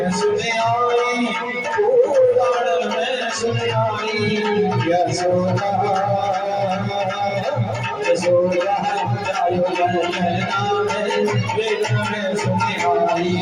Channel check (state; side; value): identical; both; correlation 1.00